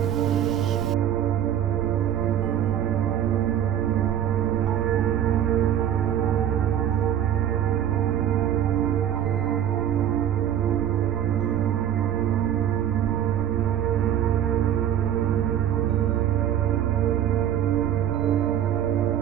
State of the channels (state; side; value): quieter; left; 10.4 dB